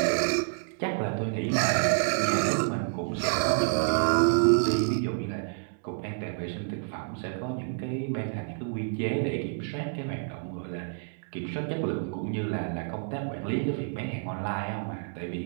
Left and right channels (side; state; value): left; silent; digital silence